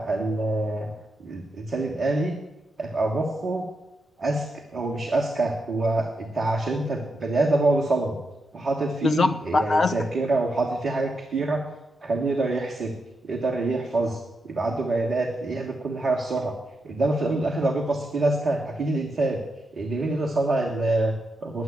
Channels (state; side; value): normal; both; correlation 0.84